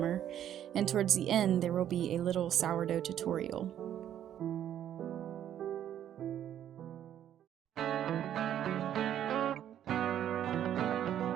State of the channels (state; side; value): quieter; left; 10.6 dB